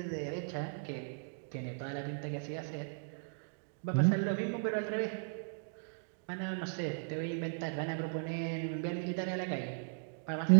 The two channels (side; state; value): left; silent; digital silence